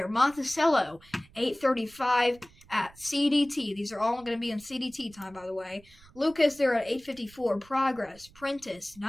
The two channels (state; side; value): noise; right; rumble, 25 dB below the sound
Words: Monticello 835 at CDT. These are all going to be in CDT time, by the way. Lucas there at 854. Progress. Prentice